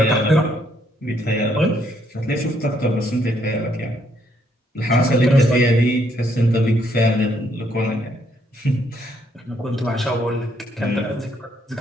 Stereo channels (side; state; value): both; normal; correlation 0.71